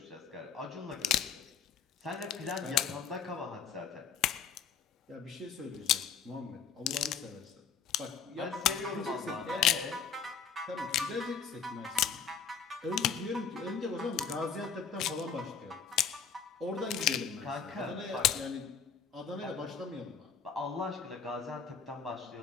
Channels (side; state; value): right; quieter; 6.9 dB